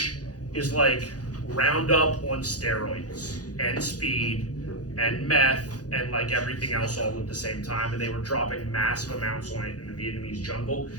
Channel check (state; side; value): late; right; 0.68 ms